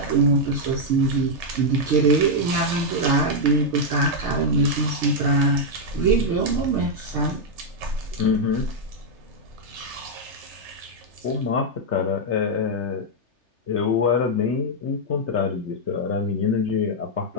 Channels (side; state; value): left; late; 3.3 ms